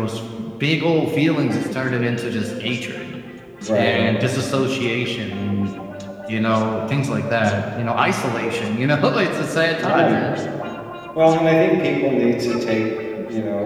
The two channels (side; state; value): both; identical; correlation 1.00